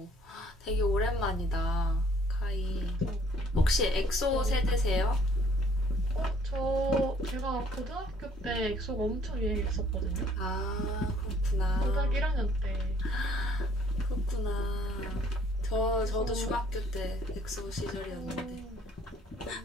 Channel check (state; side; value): normal; both; correlation 0.60